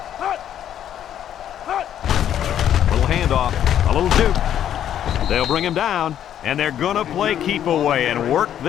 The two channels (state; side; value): quieter; right; 10.4 dB